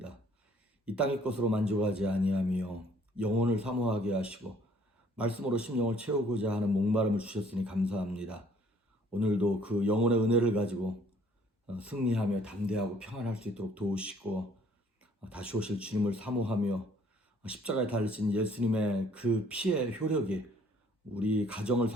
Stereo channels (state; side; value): normal; both; correlation 0.60